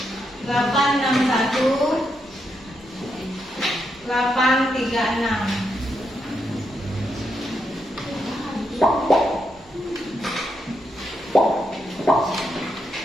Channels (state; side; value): normal; both; correlation 0.82